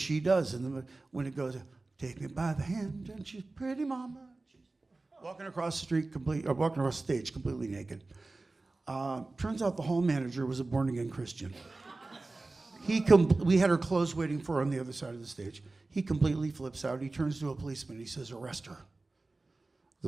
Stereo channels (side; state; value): left; quieter; 3.3 dB